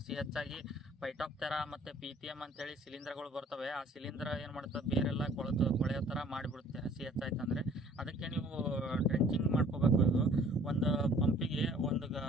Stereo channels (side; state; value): both; normal; correlation 0.54